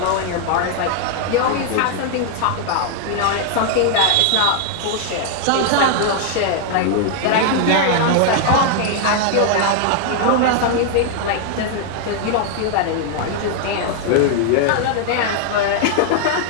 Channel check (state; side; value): different; both; correlation 0.00